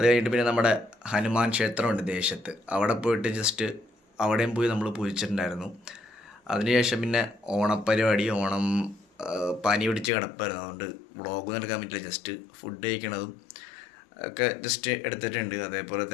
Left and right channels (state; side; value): drops out; right; at 10.1 s